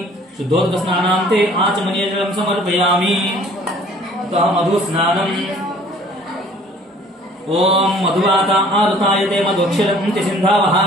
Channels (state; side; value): normal; both; correlation 0.53